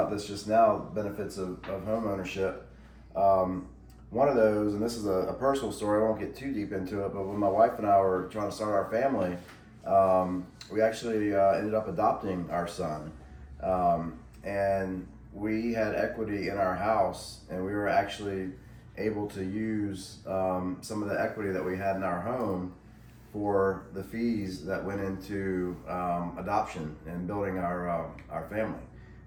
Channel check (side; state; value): both; identical; correlation 1.00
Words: this just now. Benefits of home ownership. One of those, and this is a personal story, I won't get too deep into it, but when my wife and I were trying to start our family, we actually ended up adopting our son. And we had equity in our house, and we were actually able to use some of the equity that we had in our home for the fees that went into adoption and building our family,